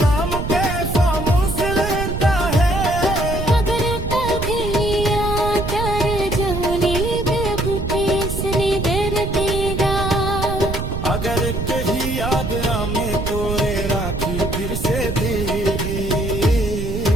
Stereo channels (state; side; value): noise; right; rumble, 4 dB below the sound